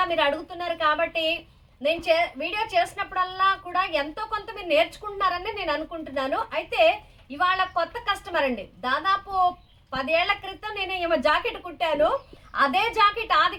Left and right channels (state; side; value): identical; both; correlation 1.00